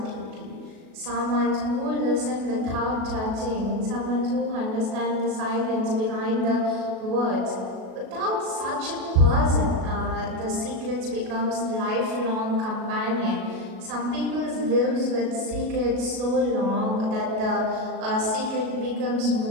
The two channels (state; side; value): late; left; 37 ms